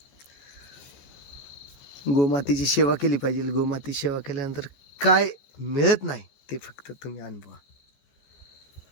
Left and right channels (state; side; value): late; right; 14 ms